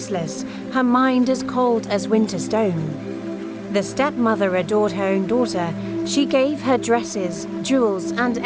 her mind as cold as winter stone. The stepmother adored her own daughter. She gave her dresses, jewels, and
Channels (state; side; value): identical; both; correlation 1.00